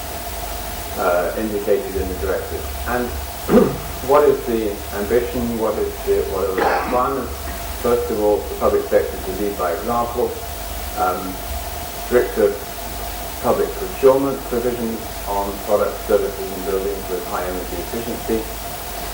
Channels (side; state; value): both; identical; correlation 1.00